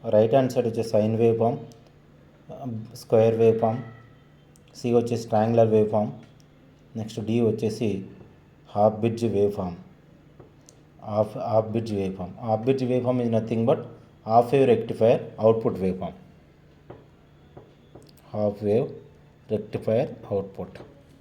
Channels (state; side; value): identical; both; correlation 1.00